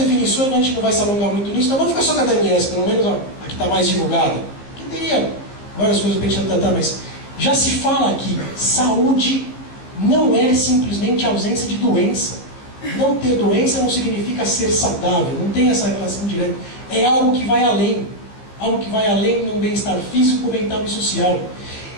a gente não vai se alongar muito nisso, então vamos ficar só com a da MS, pelo menos a que está mais divulgada. Que teria várias coisas para a gente tratar, mas já se fala aqui, saúde não é simplesmente ausência de doença. Não ter doença não significa ser saudável, não tem essa relação direta. É algo que vai além. Algo que vai além de um bem-estar físico, mental e social.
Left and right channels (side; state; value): right; late; 15 ms